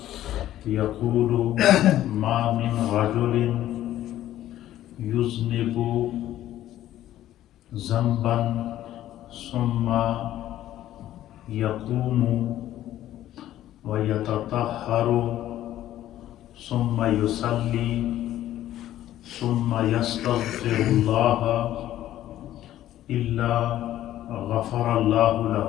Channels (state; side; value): quieter; right; 13.1 dB